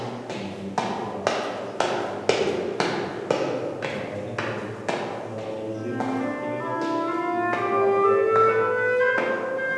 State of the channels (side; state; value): both; identical; correlation 1.00